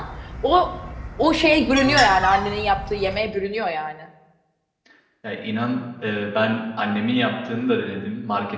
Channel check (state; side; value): identical; both; correlation 1.00